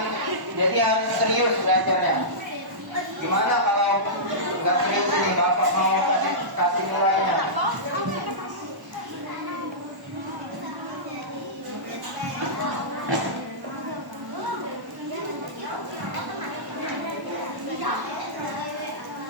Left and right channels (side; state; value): left; late; 1.1 ms